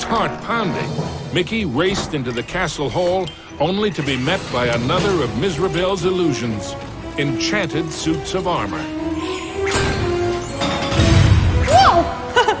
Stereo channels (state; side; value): identical; both; correlation 1.00